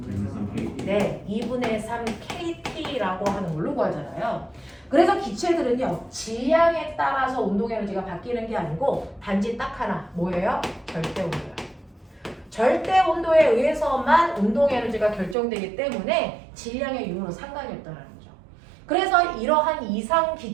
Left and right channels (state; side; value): drops out; left; at 15.4 s